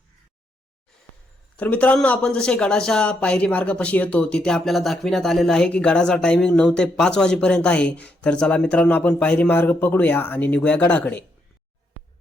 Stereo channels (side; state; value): both; normal; correlation 0.78